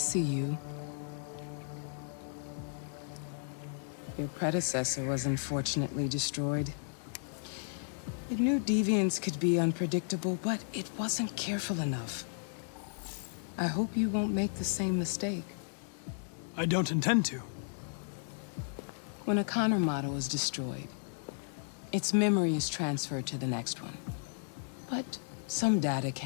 you. Your predecessor was unfortunately destroyed. It knew deviants could be unpredictable, but it wasn't careful enough. I hope you won't make the same mistake. I don't intend to. When a Connor model is destroyed, its memory is transferred to the next one. But some data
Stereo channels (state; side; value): silent; right; digital silence